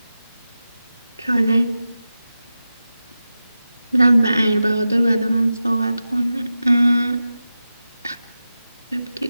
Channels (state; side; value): inverted; both; correlation -0.93